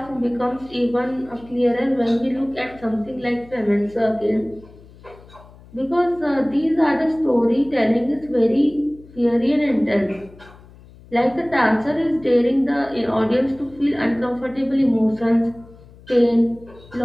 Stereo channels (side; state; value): left; noise; hum, 23 dB below the sound